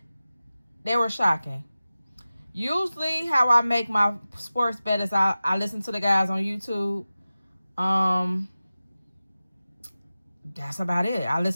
They were shocking. Usually how I make my sports bet is I listen to the guys on YouTube. That's about it. I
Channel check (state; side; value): inverted; both; correlation -0.95